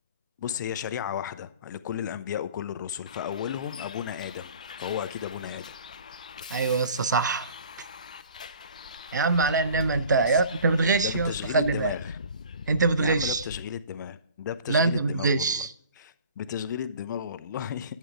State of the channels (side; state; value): both; inverted; correlation -0.46